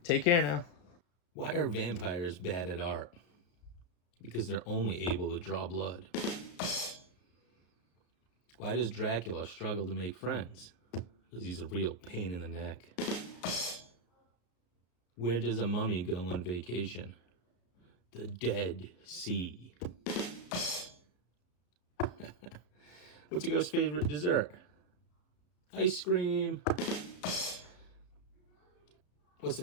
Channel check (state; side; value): late; right; 34 ms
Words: Take care now. Why are vampires bad at art? Because they're only able to draw blood. Why does Dracula struggle to make friends? Because he's a real pain in the neck. Where does a mummy go on vacation? The Dead Sea. What's a ghost's favorite dessert? Ice cream. What's the